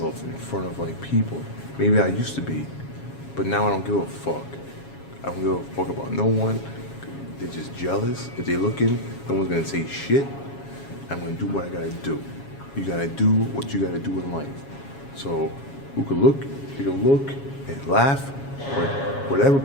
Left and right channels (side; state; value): right; late; 7.3 ms